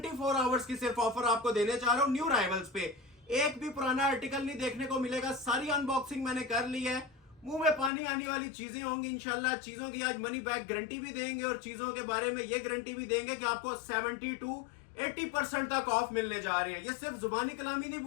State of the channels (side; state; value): right; drops out; at 7.9 s